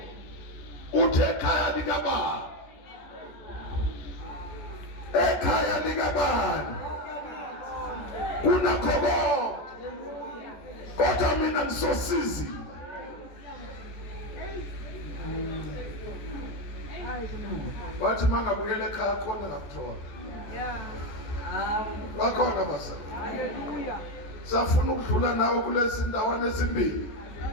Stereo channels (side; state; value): right; late; 14 ms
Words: Uthe ekhaya likabani. Ekhaya likabani. Kunakho konke. Kodwa mina ngisosizi. Wathi mangabuyela ekhaya khona ngakuthola. Bakhona basa. Hallelujah. Safuna ukudlula nawe kulezi ndawana ezimbili.